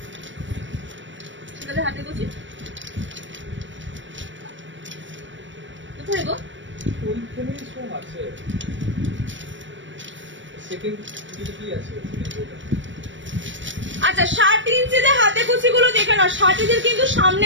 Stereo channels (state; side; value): late; left; 0.55 ms